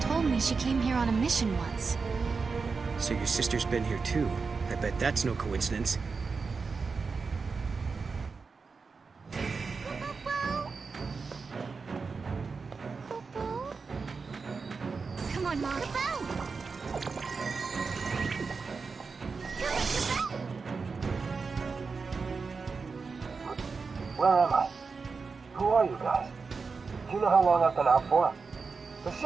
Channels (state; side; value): quieter; left; 4.8 dB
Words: me she came here on a mission once. So your sister's been here too. I bet that's no coincidence. Come on, Mom. Where am I? Who are you guys? Do you know how long I've been out for? The